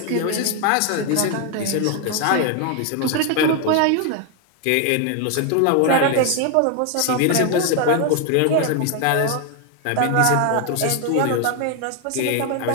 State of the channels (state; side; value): different; both; correlation 0.01